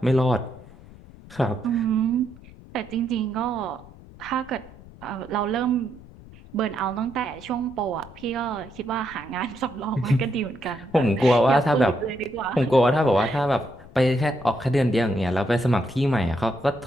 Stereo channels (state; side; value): noise; left; rumble, 20 dB below the sound